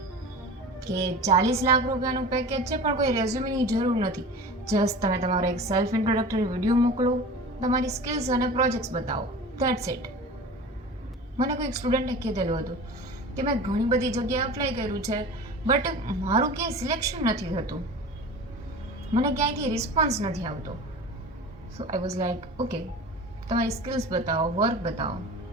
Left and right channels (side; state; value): both; normal; correlation 0.36